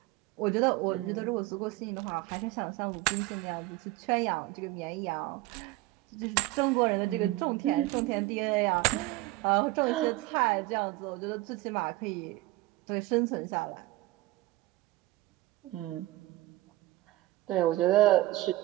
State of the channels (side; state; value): left; quieter; 18.4 dB